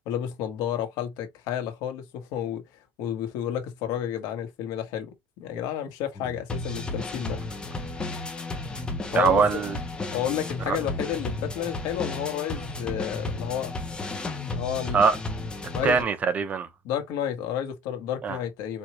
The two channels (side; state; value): both; normal; correlation 0.44